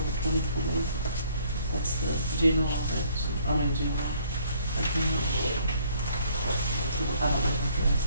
2020. That's the general, general account. So I don't know what the rest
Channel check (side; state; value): both; inverted; correlation -0.61